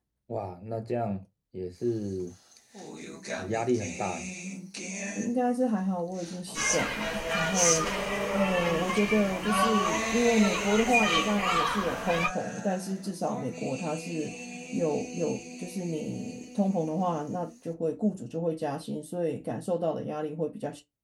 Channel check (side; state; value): both; identical; correlation 1.00